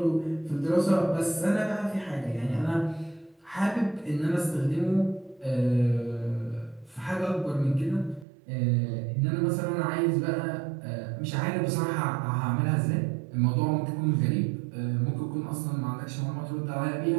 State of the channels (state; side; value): drops out; left; at 8.2 s